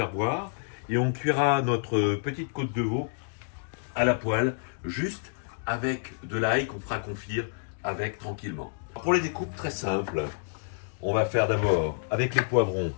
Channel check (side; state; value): right; silent; digital silence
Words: voir. Et on cuira notre petite côte de veau à la poêle, juste avec de l'ail qu'on fera confire avec tranquillement. Pour les découpes, très simple. On va faire d'abord, avec les poivrons,